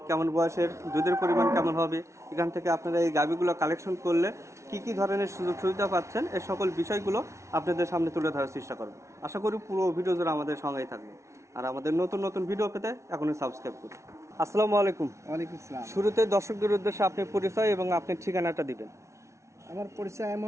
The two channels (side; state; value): left; late; 0.14 ms